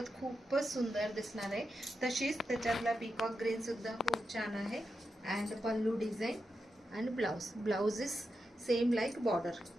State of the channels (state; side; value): normal; both; correlation 0.87